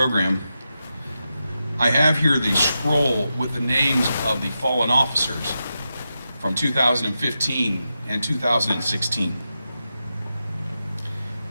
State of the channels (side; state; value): both; inverted; correlation -0.89